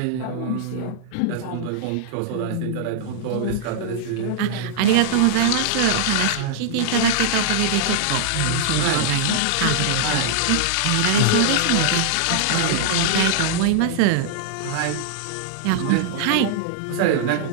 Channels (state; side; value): different; both; correlation -0.01